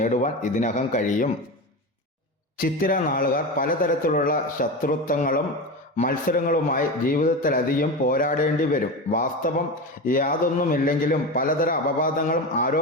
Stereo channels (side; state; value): both; normal; correlation 0.23